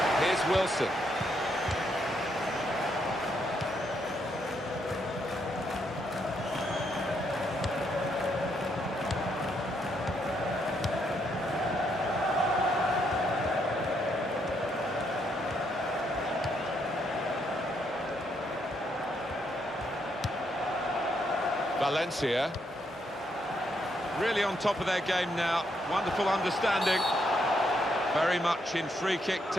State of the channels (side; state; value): both; normal; correlation 0.76